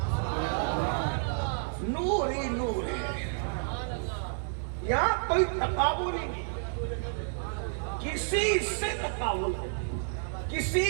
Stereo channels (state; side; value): silent; left; digital silence